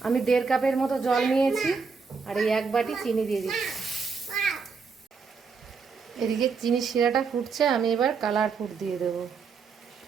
আমি 1.5 কাপের মতো জল নিয়েছি আর এই 1 বাটি চিনি দিয়ে দিচ্ছি। এদিকে চিনির শিরাটা ফুটছে, আমি এবার কালার ফুড দিয়ে দেবো।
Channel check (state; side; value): quieter; left; 5.2 dB